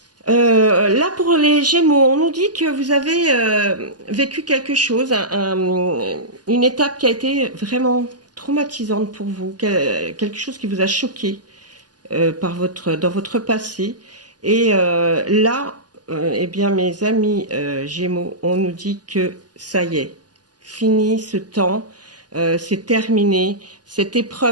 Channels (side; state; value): left; late; 0.69 ms